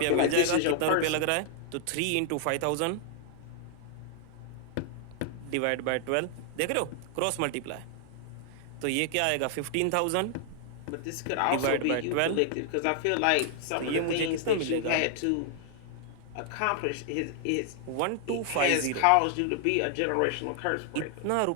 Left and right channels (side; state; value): both; different; correlation 0.00